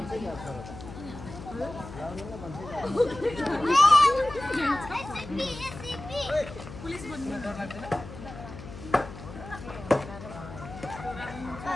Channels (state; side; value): noise; left; hum, 13 dB below the sound